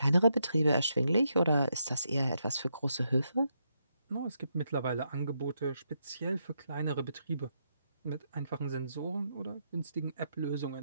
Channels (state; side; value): inverted; both; correlation -0.80